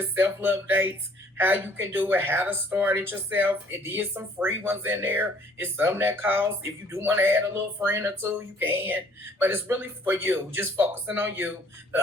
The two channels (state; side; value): normal; both; correlation 0.59